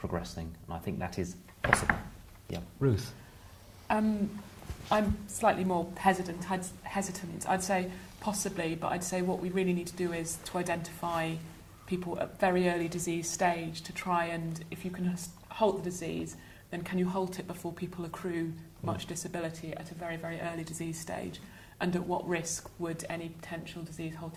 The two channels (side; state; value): both; identical; correlation 1.00